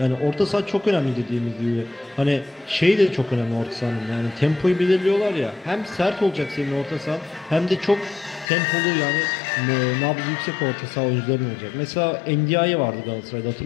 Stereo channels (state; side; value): drops out; right; at 8.5 s